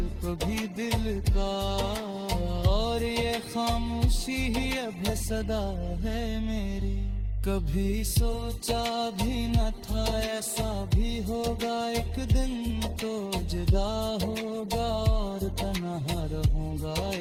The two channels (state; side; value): identical; both; correlation 1.00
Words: कभी दिल का, और ये खामोशी ही अब सदा है मेरी। कभी सोचा भी न था ऐसा भी होगा एक दिन, तो जुदा होगा और तन्हा रहूंगा